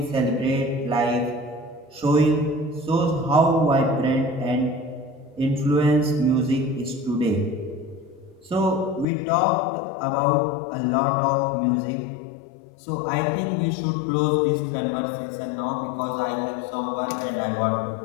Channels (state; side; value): drops out; right; at 9.1 s